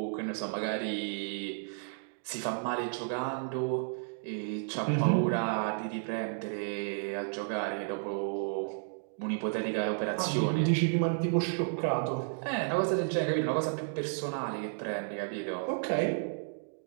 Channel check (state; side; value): silent; left; digital silence